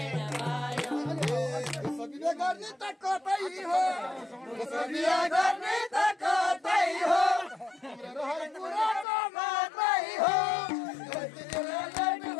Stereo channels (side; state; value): right; drops out; at 9.1 s